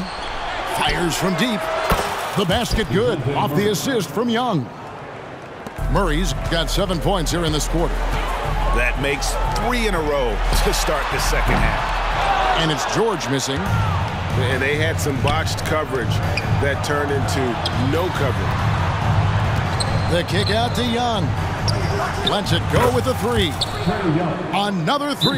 Fires from deep. The basket good off the assist from Young. Murray's got 7 points here in this quarter. That makes 3 in a row to start the second half. And it's George missing. And they had some botched coverage that turned into no coverage. The kick out to Young. Lets it go with a 3. Another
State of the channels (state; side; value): identical; both; correlation 1.00